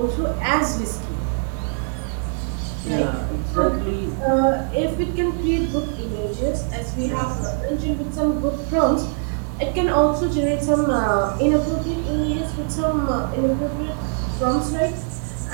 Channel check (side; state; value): left; silent; 64 dB below the other